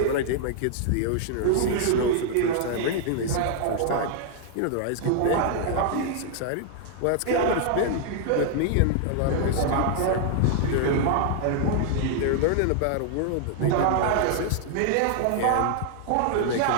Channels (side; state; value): both; different; correlation -0.01